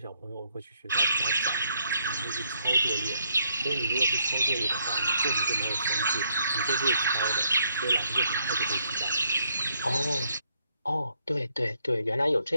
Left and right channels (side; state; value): both; inverted; correlation -0.73